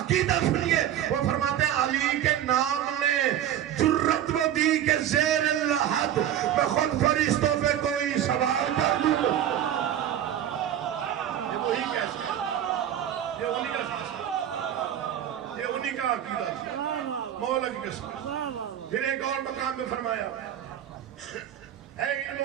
عقیدہ سنیے, وہ فرماتے ہیں علی کے نام نے جرت و دی کے زیر الحد میں خود فرشتوں پہ کوئی سوال کر دوں گا. یہ وہی کیسا ہے, یہ انہی کا فیصلہ, یہ انہی کا عقیدہ تھا, مولا کی قسم. پھر ایک اور مقام میں فرمایا ہے علم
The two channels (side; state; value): left; quieter; 10.8 dB